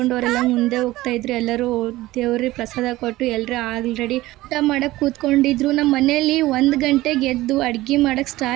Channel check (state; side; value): quieter; left; 17.5 dB